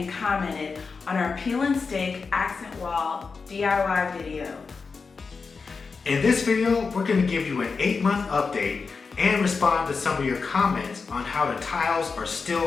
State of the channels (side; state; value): right; quieter; 4.8 dB